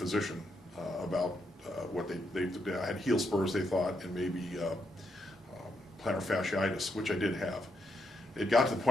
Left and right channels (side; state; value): both; normal; correlation 0.79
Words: about what I had heel spurs, they thought, and maybe plantar fasciitis, which I did have. It got to the